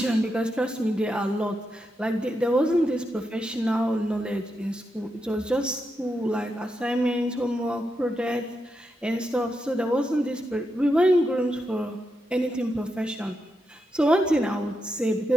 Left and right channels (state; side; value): normal; both; correlation 0.85